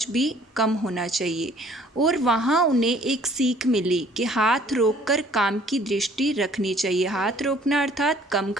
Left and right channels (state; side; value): normal; both; correlation 0.57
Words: भी कम होना चाहिए। और वहाँ उन्हें एक सीख मिली कि हाथ रोककर काम की दृष्टि रखनी चाहिए। हाथ रोकना अर्थात कम